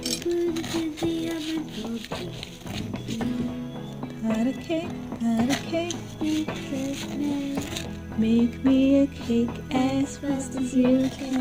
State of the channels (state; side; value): identical; both; correlation 1.00